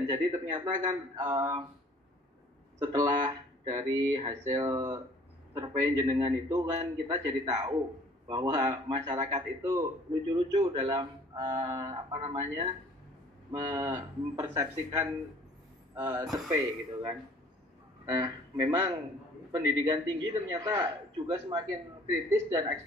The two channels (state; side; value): normal; both; correlation 0.53